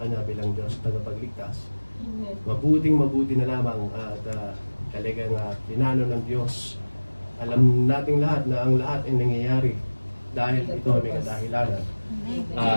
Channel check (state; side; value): inverted; both; correlation -1.00